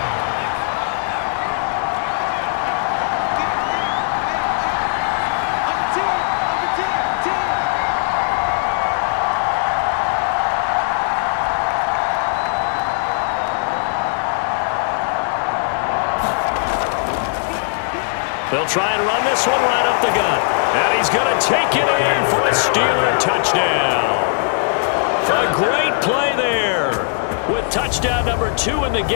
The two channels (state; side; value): silent; right; 67 dB below the other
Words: They'll try and run this one right up the gut. And he's going to take it in for a Steeler touchdown. A great play there with touchdown number 2 in the